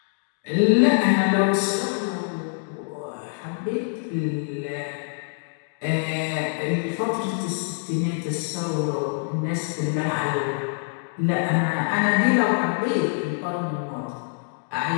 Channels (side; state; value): right; silent; 62 dB below the other